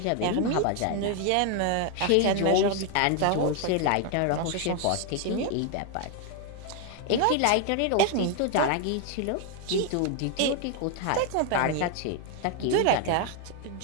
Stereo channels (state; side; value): different; both; correlation 0.01